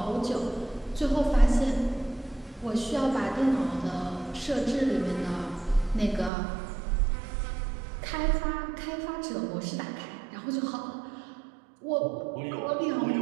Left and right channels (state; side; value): drops out; left; at 6.3 s